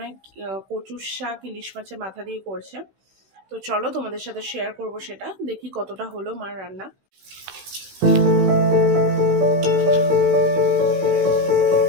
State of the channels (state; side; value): late; left; 16 ms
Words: হয় কচুর শাক ইলিশ মাছের মাথা দিয়ে করছে। তো চলো তোমাদের সাথে শেয়ার করব সেটা, দেখি কতটা হলো মার রান্না।